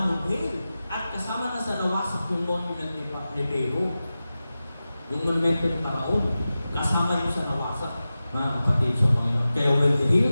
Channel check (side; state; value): both; inverted; correlation -0.94